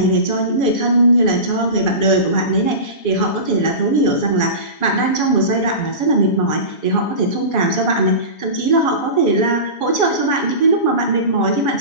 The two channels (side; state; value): right; late; 7.1 ms